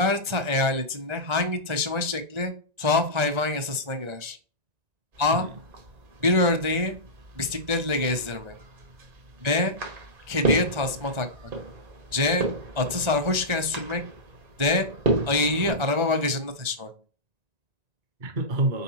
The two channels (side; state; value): left; late; 1.9 ms